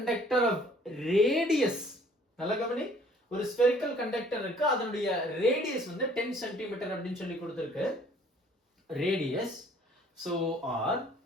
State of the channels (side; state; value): both; normal; correlation 0.57